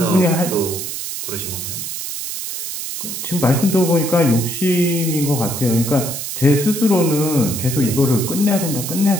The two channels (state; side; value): noise; right; hiss, 6 dB below the sound